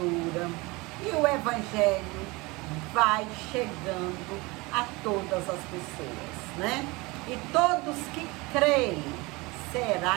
E o Evangelho vai chegando a todas as pessoas, né? E todos que creem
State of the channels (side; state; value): left; quieter; 24.2 dB